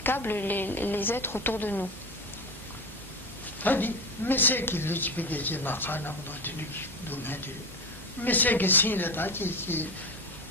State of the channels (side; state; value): both; normal; correlation 0.22